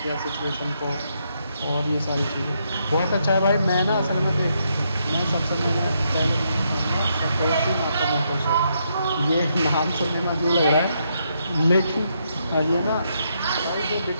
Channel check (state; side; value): inverted; both; correlation -0.78